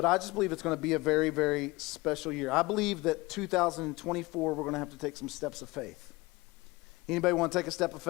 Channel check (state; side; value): quieter; right; 22.4 dB